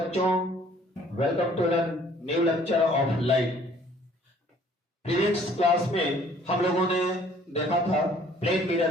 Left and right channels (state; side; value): normal; both; correlation 0.57